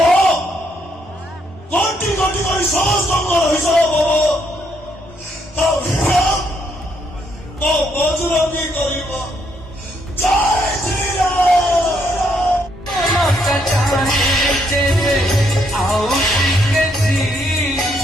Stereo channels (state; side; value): normal; both; correlation 0.73